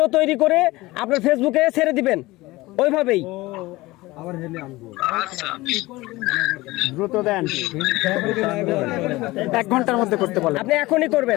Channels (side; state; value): right; quieter; 19.8 dB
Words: তৈরি করে আপনার ফেসবুকে ছেড়ে দিবেন ওইভাবেই। আচ্ছা দ্রুত দেন 1 ঘন্টার মধ্যে করতে বলেন। আপনি এখনই